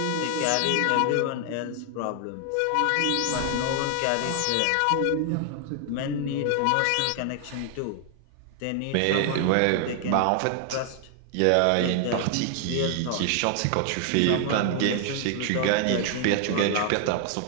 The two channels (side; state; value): both; different; correlation 0.00